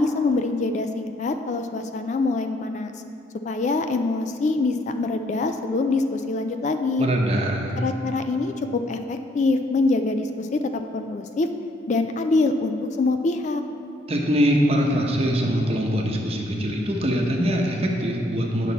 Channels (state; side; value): normal; both; correlation 0.67